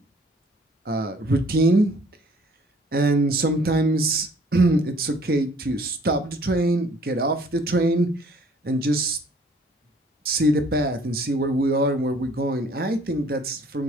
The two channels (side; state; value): both; normal; correlation 0.57